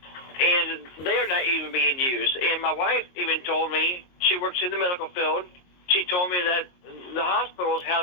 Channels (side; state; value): right; late; 22 ms